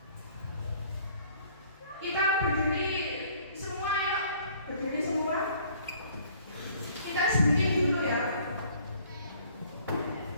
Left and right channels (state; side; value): inverted; both; correlation -0.57